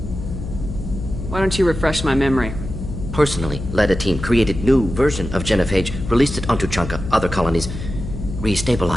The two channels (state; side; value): noise; left; hum, 8 dB below the sound